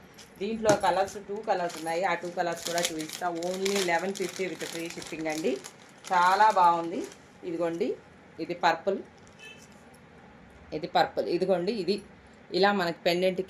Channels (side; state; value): both; identical; correlation 1.00